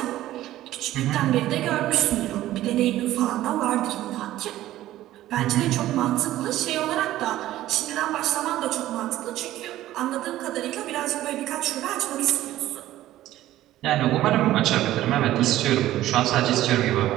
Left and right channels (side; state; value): left; quieter; 14.5 dB